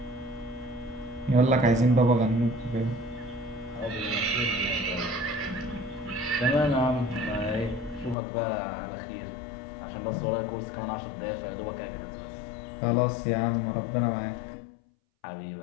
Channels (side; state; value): right; drops out; at 8.2 s